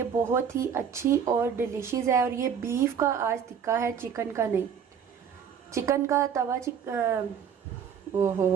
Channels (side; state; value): left; quieter; 7.6 dB